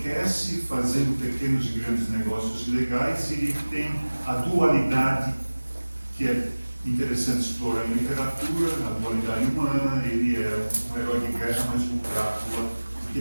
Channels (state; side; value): inverted; both; correlation -1.00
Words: fazendo pequenos e grandes negócios legais, e ele tem a dualidade, que é interessante explorar em literatura, a dualidade humana. Ele é um herói de guerra, mas um Drácula, que